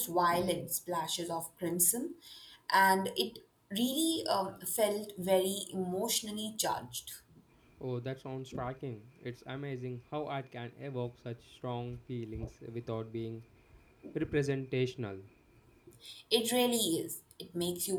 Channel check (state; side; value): identical; both; correlation 1.00